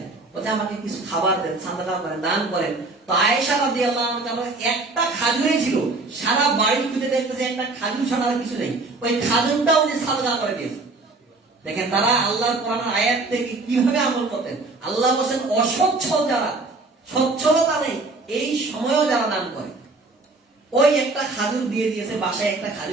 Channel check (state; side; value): quieter; left; 3.4 dB